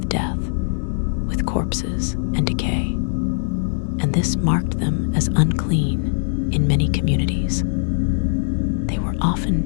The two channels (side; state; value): right; silent; digital silence